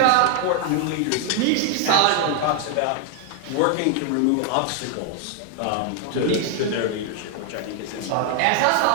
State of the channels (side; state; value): both; different; correlation 0.00